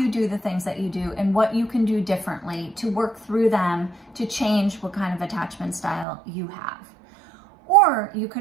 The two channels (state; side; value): drops out; left; at 6.1 s